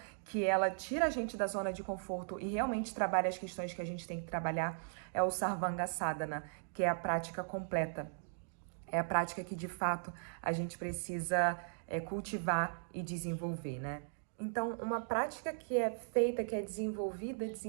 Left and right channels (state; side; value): silent; left; digital silence